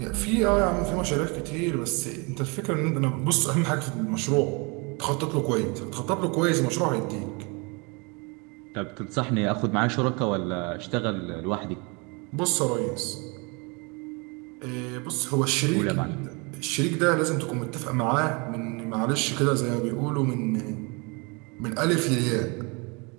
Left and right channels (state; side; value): quieter; left; 30.1 dB